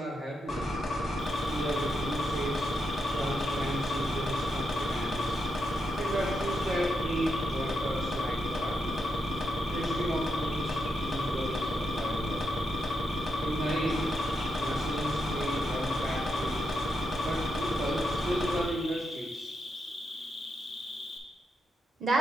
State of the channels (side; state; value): both; normal; correlation 0.83